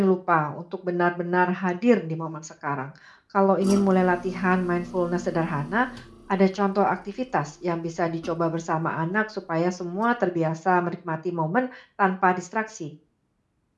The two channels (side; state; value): both; identical; correlation 1.00